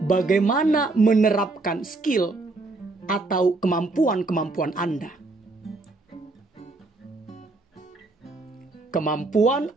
Bagaimana menerapkan skill atau kemampuan Anda. Kemampuan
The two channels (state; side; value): quieter; left; 3.3 dB